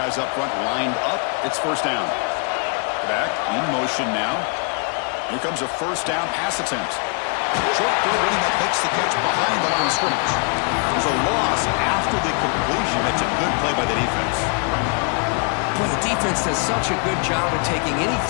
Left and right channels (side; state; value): right; quieter; 38.8 dB